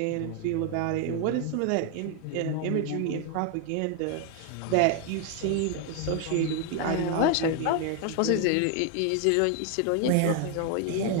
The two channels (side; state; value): both; different; correlation 0.00